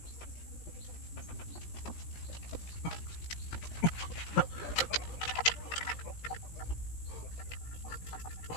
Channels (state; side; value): late; right; 17 ms